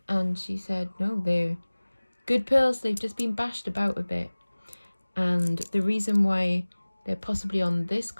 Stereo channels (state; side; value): inverted; both; correlation -1.00